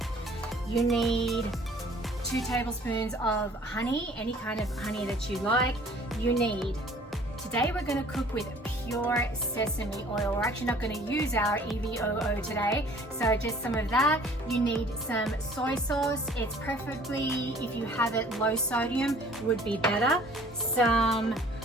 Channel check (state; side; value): normal; both; correlation 0.53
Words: You need 2 tablespoons of honey, any kind of honey that you like. Today we're going to cook with pure sesame oil. We're actually not going to use our EVOO today, so just some of that. You need some soy sauce. It's preferably, if you have it low sodium, would be better. Some